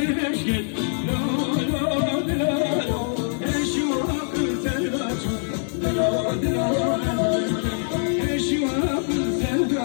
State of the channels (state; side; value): silent; right; digital silence